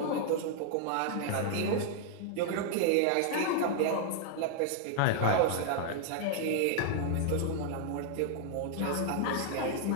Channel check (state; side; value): different; both; correlation 0.00